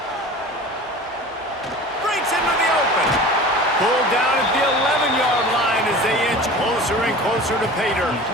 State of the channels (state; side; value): normal; both; correlation 0.38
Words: Breaks into the open. Pulled down at the 11-yard line as they inch closer and closer to pay dirt.